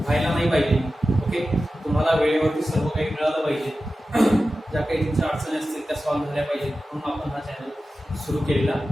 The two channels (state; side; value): normal; both; correlation 0.94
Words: नाही पाहिजे. ओके, तुम्हाला वेळेवरती सर्व काही मिळालं पाहिजे, ज्या काही तुमच्या अडचणी असतील त्या सॉल्व्ह झाल्या पाहिजेत, म्हणून आपण हा चॅनल सुरू केलेला